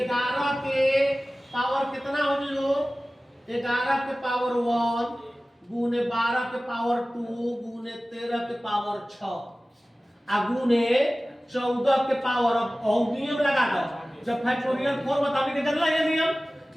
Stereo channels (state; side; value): normal; both; correlation 0.97